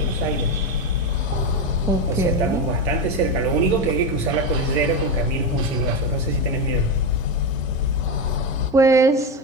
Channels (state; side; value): normal; both; correlation 0.13